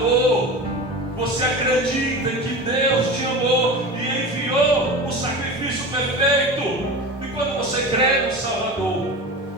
você acredita que Deus te amou e enviou o sacrifício perfeito. E quando você crê no Salvador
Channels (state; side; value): normal; both; correlation 0.31